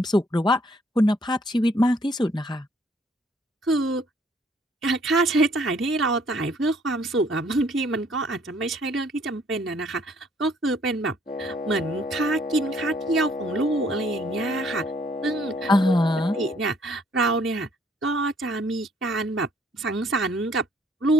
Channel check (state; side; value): normal; both; correlation 0.63